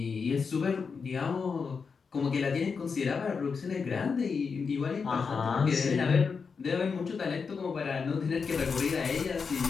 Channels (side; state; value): right; quieter; 5.4 dB